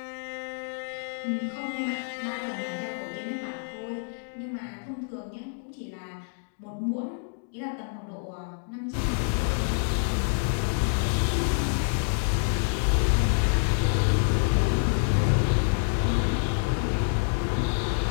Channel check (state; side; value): silent; right; digital silence